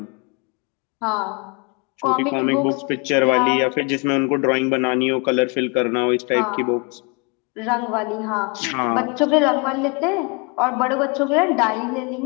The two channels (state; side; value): quieter; right; 31.3 dB